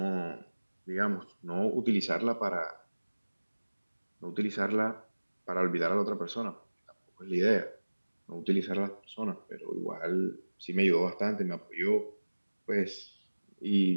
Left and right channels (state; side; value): inverted; both; correlation -1.00